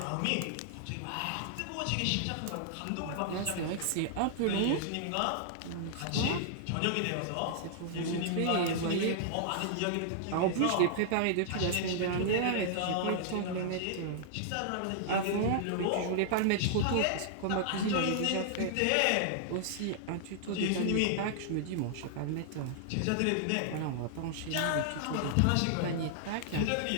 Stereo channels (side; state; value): both; different; correlation -0.01